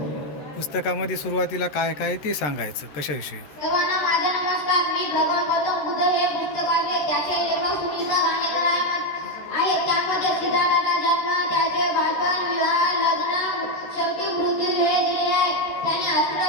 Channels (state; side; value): late; right; 13 ms